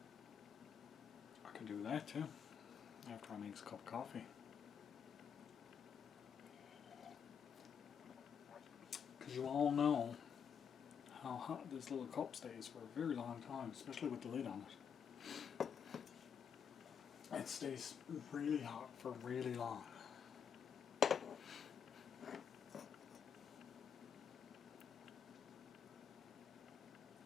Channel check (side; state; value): right; quieter; 7.4 dB